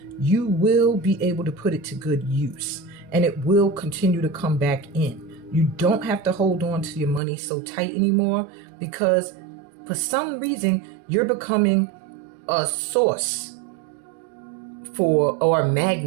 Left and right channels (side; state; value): left; drops out; at 7.2 s